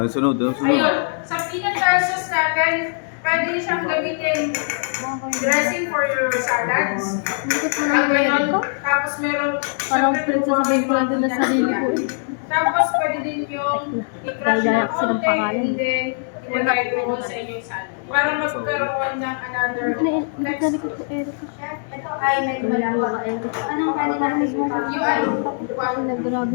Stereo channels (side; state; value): right; silent; digital silence